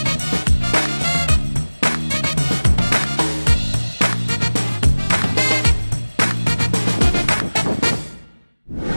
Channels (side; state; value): both; inverted; correlation -1.00